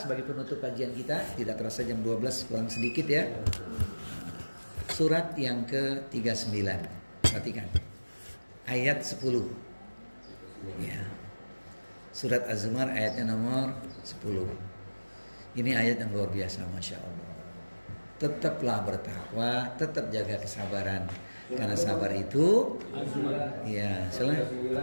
penutup kajian kita. Tidak terasa jam 12 kurang sedikit ya. Surat yang ke-39. Perhatikan. Ayat 10. Ya. Surat Az-Zumar ayatnya nomor 10. Ini ayat yang luar biasa, Masya Allah. Tetaplah bertakwa, tetap jaga kesabaran. Karena sabar itu, ya,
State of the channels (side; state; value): both; inverted; correlation -1.00